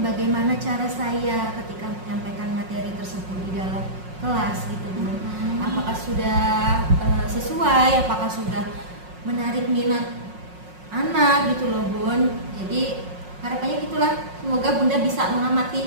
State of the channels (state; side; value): late; left; 5.5 ms